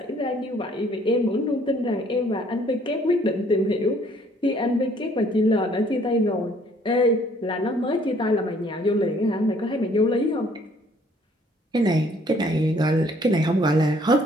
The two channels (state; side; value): normal; both; correlation 0.61